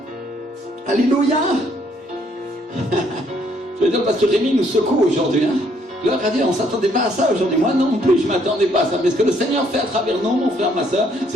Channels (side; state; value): both; normal; correlation 0.67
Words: Alléluia. Je vais dire parce que Rémi nous secoue aujourd'hui. Gloire à Dieu, on ne s'attendait pas à ça aujourd'hui. Moi non plus, je ne m'attendais pas à ça. Mais ce que le Seigneur fait à travers nous, mon frère, ma soeur,